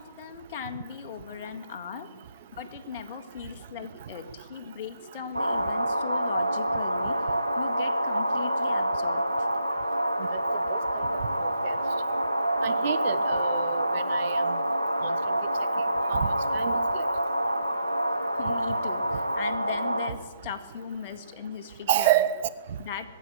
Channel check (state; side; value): inverted; both; correlation -0.77